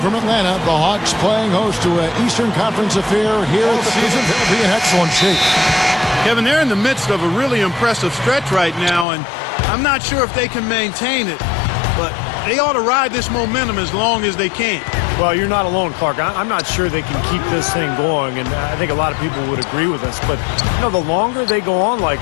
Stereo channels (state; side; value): drops out; right; at 9.1 s